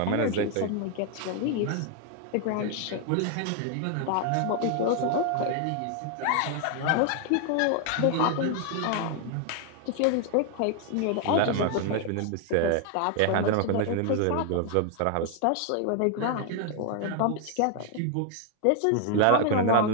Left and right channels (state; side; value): different; both; correlation 0.00